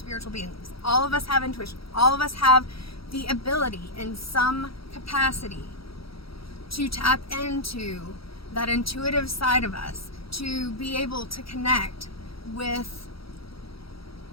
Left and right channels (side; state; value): right; late; 0.75 ms